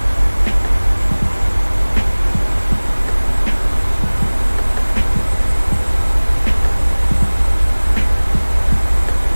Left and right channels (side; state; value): both; inverted; correlation -1.00